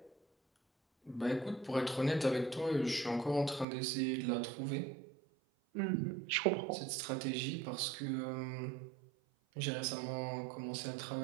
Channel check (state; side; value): drops out; left; at 3.7 s